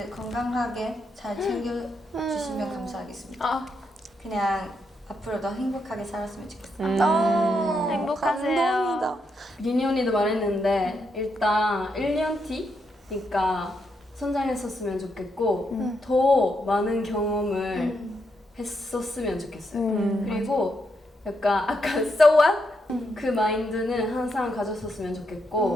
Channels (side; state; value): both; normal; correlation 0.80